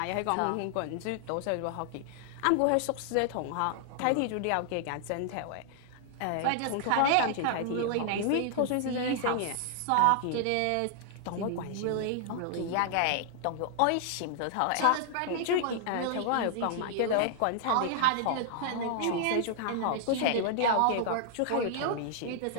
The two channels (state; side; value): different; both; correlation -0.01